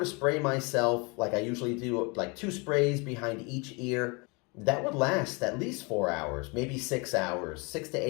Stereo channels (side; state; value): right; quieter; 29.8 dB